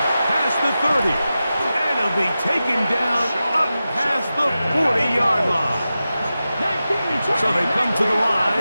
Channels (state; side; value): inverted; both; correlation -0.93